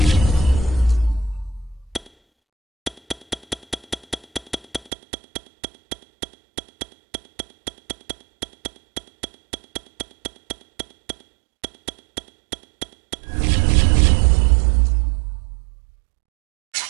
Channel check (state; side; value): drops out; left; at 4.9 s